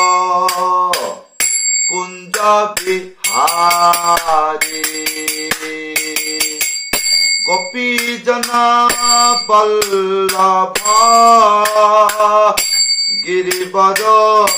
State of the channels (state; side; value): identical; both; correlation 1.00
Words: কুঞ্জ বিহারী, গোপীজন বল্লভ গিরিবর